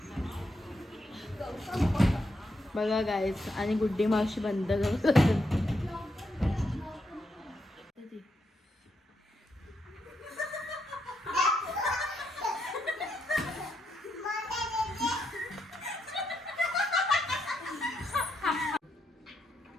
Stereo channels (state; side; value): normal; both; correlation 0.81